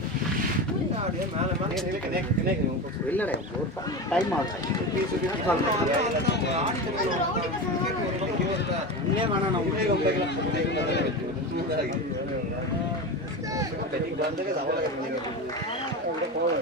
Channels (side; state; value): both; normal; correlation 0.23